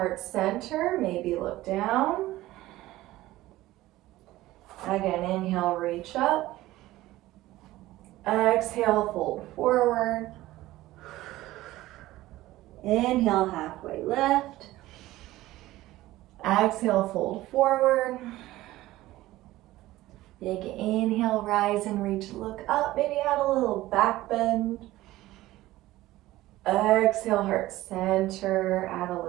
center. Maybe look down. Again, inhale, reach up. Exhale, fold forward. Inhale, halfway lift. Exhale, fold forward. Big inhale, rise and reach, look up. Maybe add a little back bend. Exhale, heart center, add a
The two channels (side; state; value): left; quieter; 16.7 dB